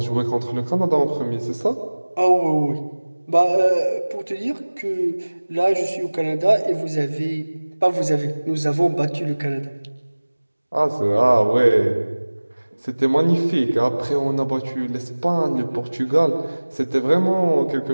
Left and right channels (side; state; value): both; inverted; correlation -1.00